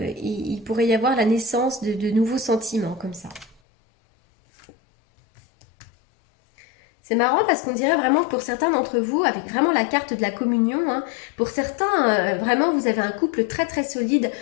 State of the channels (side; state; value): right; drops out; at 3.6 s